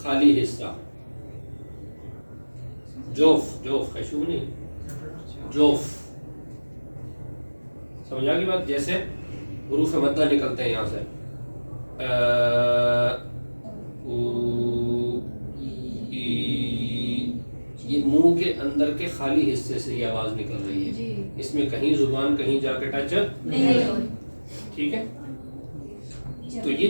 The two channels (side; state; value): both; inverted; correlation -1.00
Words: خالی حصہ. جوف، خیشوم نہیں، جوف. سمجھ آ گئی بات؟ جیسے حروف مدہ نکلتے ہیں یہاں سے، یہ منہ کے اندر کے خالی حصے سے یہ آواز نکل رہی ہے. اس میں کہیں زبان کہیں جا کے ٹچ نہیں. ٹھیک ہے، تو